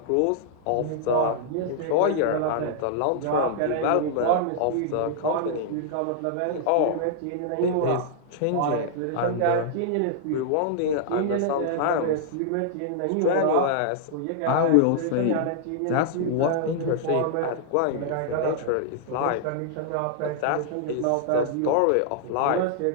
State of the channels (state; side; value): different; both; correlation -0.01